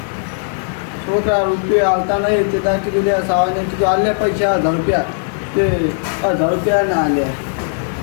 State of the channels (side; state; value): right; silent; 68 dB below the other